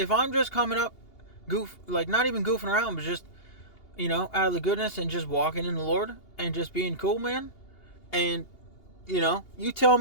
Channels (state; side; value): late; right; 2.8 ms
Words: I'm just coming up, not even goofing around, but just, you know, out of the goodness and just walking in the Lord and just being cool, man. And, you know, you tell